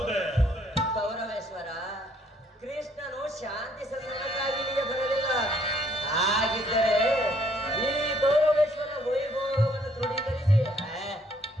ಗೌರವೇಶ್ವರ, ಕೃಷ್ಣನು ಶಾಂತಿ ಸಂಧಾನಕ್ಕಾಗಿ ಇಲ್ಲಿಗೆ ಬರಲಿಲ್ಲ. ಹಾಗಿದ್ದರೆ ಈ ಗೌರವೇಶ್ವರ ವೈಭೋಗವನ್ನು ತೃಢೀಕರಿಸಿ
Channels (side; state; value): both; normal; correlation 0.66